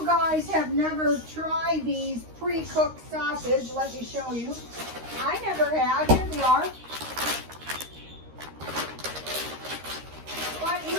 guys have never tried these pre-cooked sausage, let me show you. I never have. Here they are. But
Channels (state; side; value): late; left; 13 ms